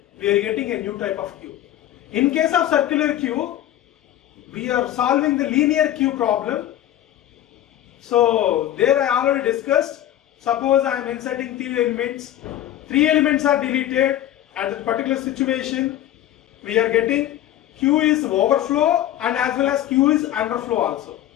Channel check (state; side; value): quieter; right; 12.5 dB